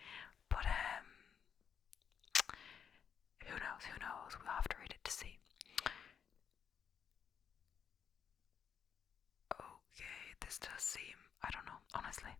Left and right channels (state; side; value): quieter; right; 7.5 dB